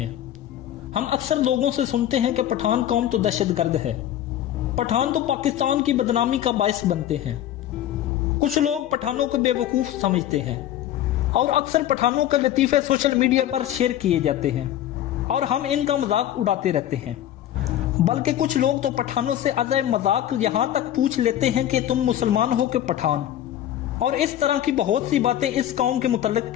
हम अक्सर लोगों से सुनते हैं कि पठान कौम तो दहशतगर्द है, पठान तो पाकिस्तान की बदनामी का बायस बनते हैं। कुछ लोग पठानों को बेवकूफ समझते हैं और अक्सर पठानों के लतीफे सोशल मीडिया पर शेयर किए जाते हैं और हम इनका मजाक उड़ाते रहते हैं। बल्कि कुछ लोग तो पठानों से अज़य मजाक यहाँ तक पूछ लेते हैं कि तुम मुसलमान हो कि पठान, और इस तरह की बहुत सी बातें इस कौम के मुतल्लिक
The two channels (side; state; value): right; quieter; 11.9 dB